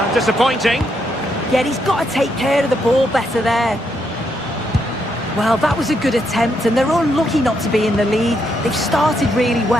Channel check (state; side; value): normal; both; correlation 0.78